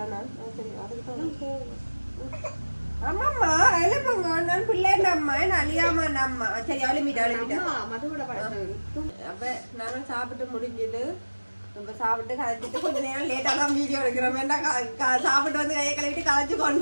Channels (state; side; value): inverted; both; correlation -1.00